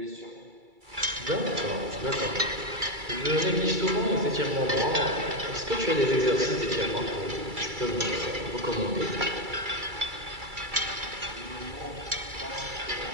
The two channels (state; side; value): late; left; 2.3 ms